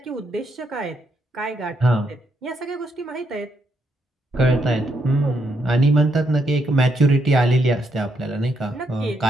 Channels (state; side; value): normal; both; correlation 0.77